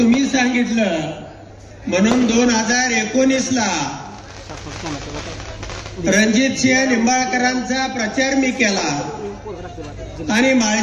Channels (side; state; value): both; identical; correlation 1.00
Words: सांगितलं म्हणून 2019ला रणजित सिंह निंबाळकरांचा प्रचार मी केला आणि